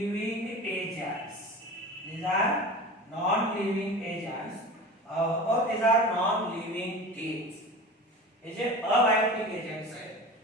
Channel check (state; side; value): normal; both; correlation 0.34